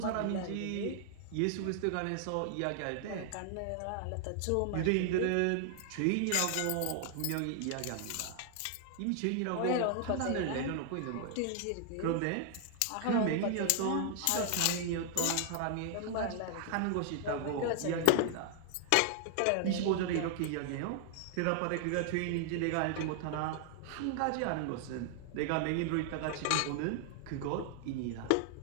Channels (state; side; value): different; both; correlation 0.00